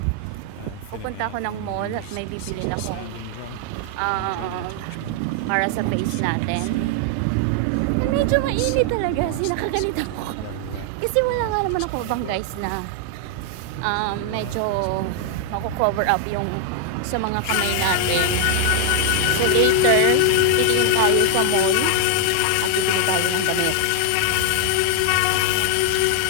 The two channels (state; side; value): different; both; correlation 0.00